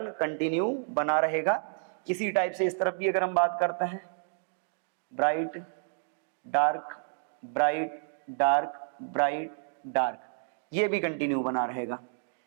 कंटिन्यू बना रहेगा। इसी टाइप से इस तरफ भी अगर हम बात करते हैं, bright dark bright dark bright dark, ये भी कंटिन्यू बना रहेगा।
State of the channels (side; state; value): left; silent; digital silence